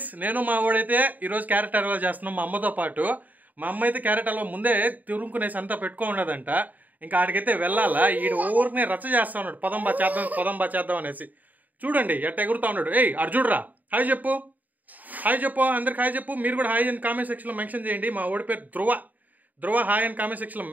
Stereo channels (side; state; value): left; late; 0.081 ms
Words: నేను మా వాడైతే ఈరోజు క్యారెట్ హల్వా చేస్తున్నాం మా అమ్మతో పాటు. మా అమ్మ అయితే క్యారెట్ హల్వా ముందే తురుముకునేసి అంతా పెట్టుకోండదంట. ఇంకా ఆడికైతే వెళ్ళాలా, ఈ ఊరినే రచ్చ చేస్తా ఉన్నాడు. పదం బా చేద్దాం అనేసి. చూడండి ఎట్ట ఎగురుతా ఉన్నాడు. ఏయ్ అర్జుడ్రా, హాయ్ చెప్పు, అందరికి హాయ్ చెప్పు. మీరు కూడా హాయ్ అని కామెంట్ సెక్షన్లో మెన్షన్ చేయండి. మా ఓడి పేరు ధ్రువ హాయ్ అని కామెంట్ సెక్షన్లో